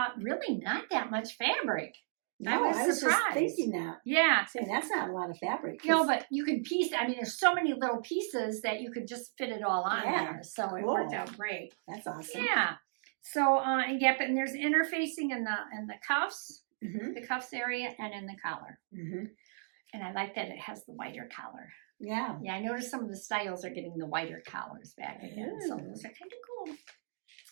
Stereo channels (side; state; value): left; silent; digital silence